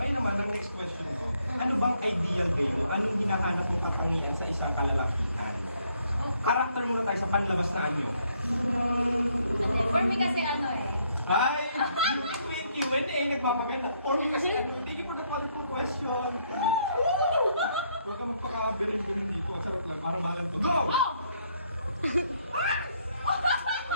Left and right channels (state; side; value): inverted; both; correlation -0.71